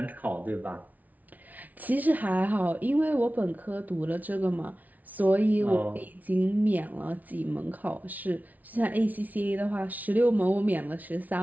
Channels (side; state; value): left; late; 0.075 ms